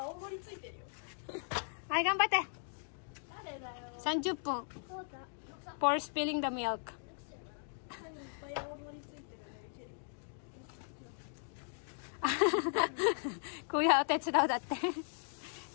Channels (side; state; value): right; silent; digital silence